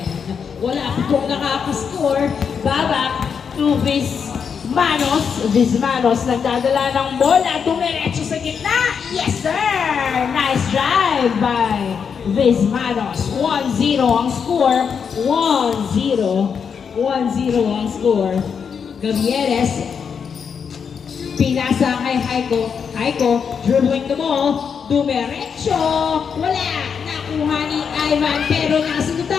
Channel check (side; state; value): right; quieter; 6.6 dB